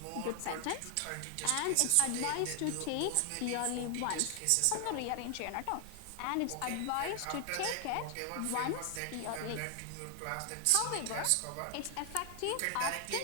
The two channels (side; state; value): both; different; correlation 0.00